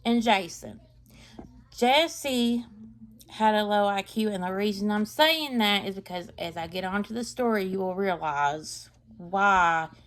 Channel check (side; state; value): both; identical; correlation 1.00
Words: and Jason. Jesse had a low IQ, and the reason I'm saying that is because as I get onto the story, you will realize why